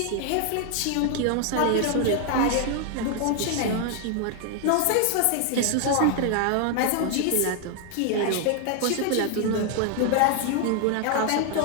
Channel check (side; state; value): both; different; correlation 0.00